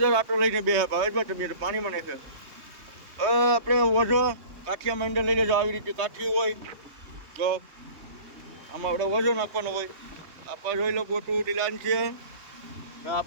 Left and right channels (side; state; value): left; late; 3.2 ms